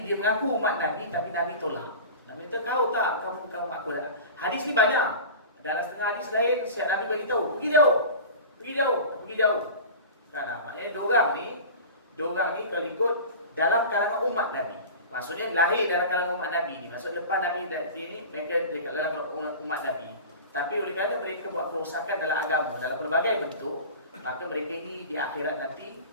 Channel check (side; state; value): both; inverted; correlation -0.35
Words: dia mengaku umat Nabi tapi Nabi tolak. Nabi kata, kau tak, kamu bukan umat aku. Hadis ni banyak. Dalam setengah hadis lain, siap Nabi beritahu, pergi jauh. Kan, maknanya diorang ni kalau ikut dalam kalangan umat Nabi. Maksudnya lahir dalam kalangan umat Nabi ni. Maksud lepas Nabi ni mereka dekat dalam umat Nabi. Tapi oleh kerana mereka buat kerosakan dalam agama dalam pelbagai bentuk, maka mereka ini di akhirat nanti